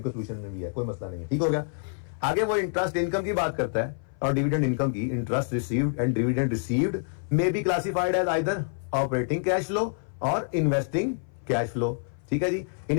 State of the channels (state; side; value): silent; right; 57 dB below the other